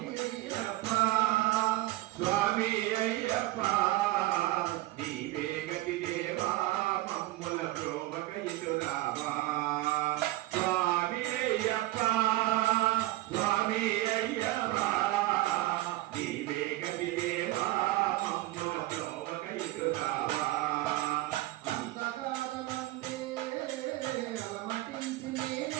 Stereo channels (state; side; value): quieter; left; 17.7 dB